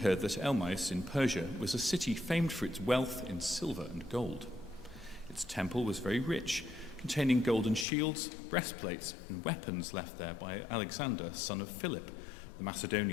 that Elmais in Persia was a city famed for its wealth in silver and gold. Its temple was very rich, containing golden shields, breastplates, and weapons left there by Alexander, son of Philip, the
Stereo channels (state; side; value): drops out; right; at 7.9 s